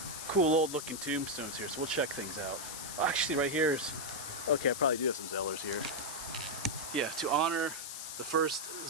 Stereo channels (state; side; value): noise; left; hiss, 7 dB below the sound